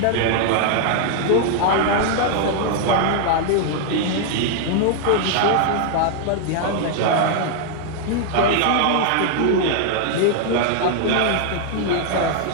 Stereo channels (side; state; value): both; different; correlation 0.00